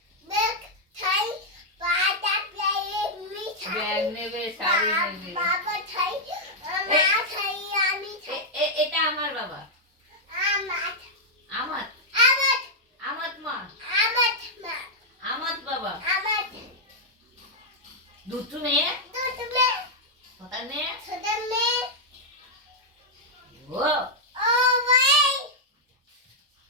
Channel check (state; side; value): normal; both; correlation -0.04